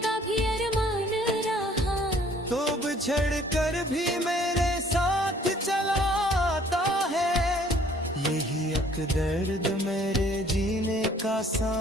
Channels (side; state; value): both; normal; correlation 0.58